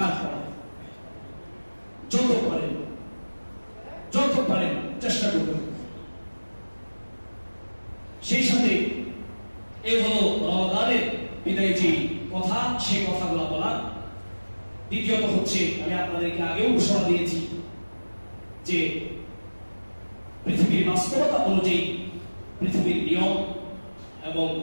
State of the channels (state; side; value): inverted; both; correlation -1.00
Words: করা। যত পারেন চেষ্টা করবেন। সেই সাথে এই হলো রমাদানের বিদায় যে কথা, সেই কথাগুলো বলা। দ্বিতীয়ত হচ্ছে, আমি আপনাদেরকে আগেও ঘোষণা দিয়েছি যে পৃথিবীর বাস্তবতা অনুযায়ী, পৃথিবীর নিয়ম এবং